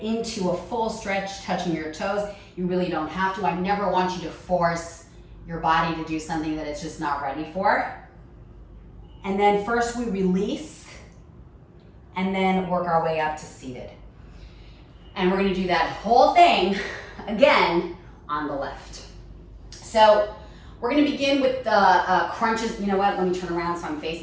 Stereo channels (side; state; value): both; identical; correlation 1.00